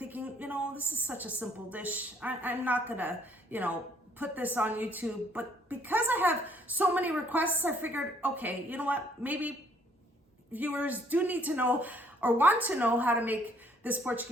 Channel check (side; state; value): both; normal; correlation 0.64